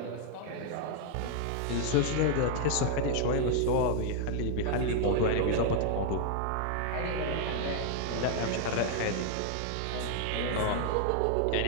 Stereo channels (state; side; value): different; both; correlation 0.00